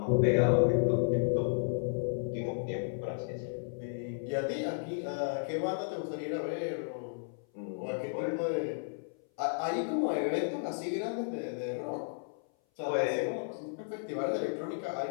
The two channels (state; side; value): silent; right; 56 dB below the other